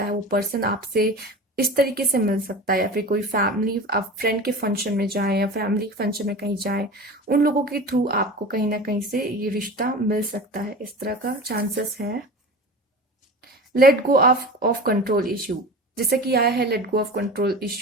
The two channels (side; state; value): both; normal; correlation 0.33